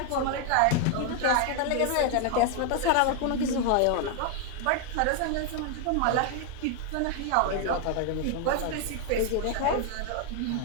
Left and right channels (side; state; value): both; different; correlation 0.00